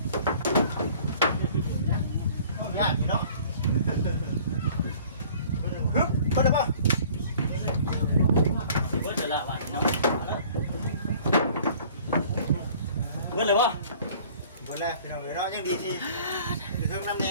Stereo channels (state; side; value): inverted; both; correlation -0.51